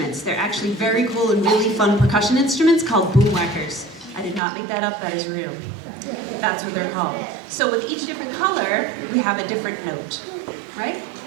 They're actually very cool and really fun percussion instruments called boomwhackers. I did not make that up, that is real. That's what they're called. So with each different color, we have a different note, right?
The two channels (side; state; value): left; drops out; at 4.4 s